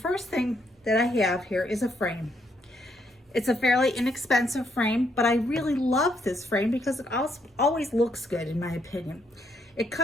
thing that I have here is a frame. It's a fairly inexpensive frame, but I really love this frame because it always looks good in my opinion. It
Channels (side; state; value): both; normal; correlation 0.74